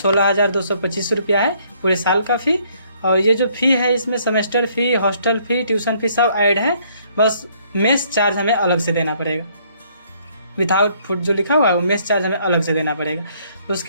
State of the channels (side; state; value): both; inverted; correlation -0.65